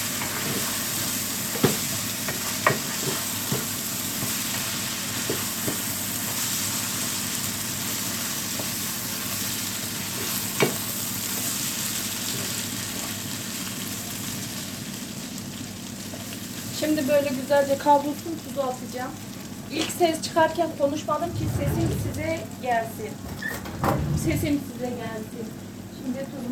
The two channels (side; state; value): both; identical; correlation 1.00